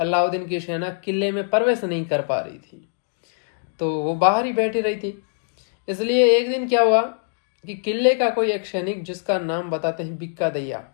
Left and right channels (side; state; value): right; silent; digital silence